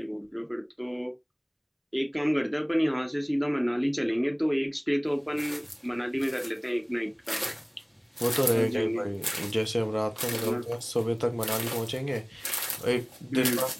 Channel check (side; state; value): both; identical; correlation 1.00